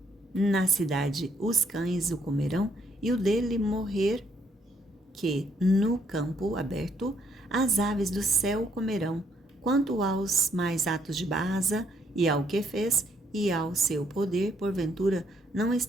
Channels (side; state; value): both; normal; correlation 0.70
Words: na cidade, os cães o comerão, e o dele morrer, que no campo aberto as aves do céu comerão. Quanto aos mais atos de Baasa, e ao que fez, e ao seu poder, porventura, não